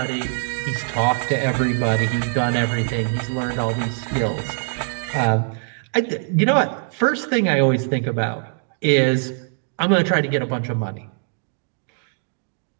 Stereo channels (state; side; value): silent; left; 64 dB below the other